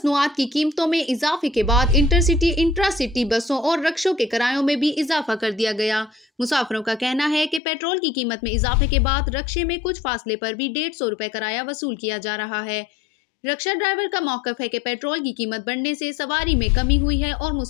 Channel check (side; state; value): right; drops out; at 7.6 s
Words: की कीमतों में इजाफे के बाद इंटरसिटी इंट्रासिटी बसों और रक्षों के किरायों में भी इजाफा कर दिया गया। मुसाफिरों का कहना है कि पेट्रोल की कीमत में इजाफे के बाद रक्षे में कुछ फासले पर भी 150 रुपए किराया वसूल किया जा रहा है। रक्षा ड्राइवर का मौकफ है कि पेट्रोल की कीमत बढ़ने से सवारी में कमी हुई है और